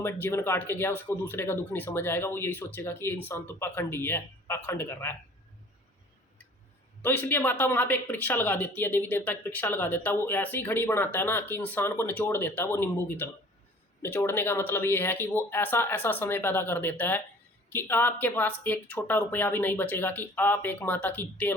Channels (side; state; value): both; normal; correlation 0.49